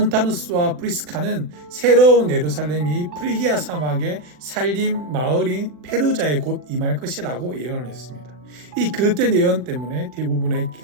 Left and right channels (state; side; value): late; left; 40 ms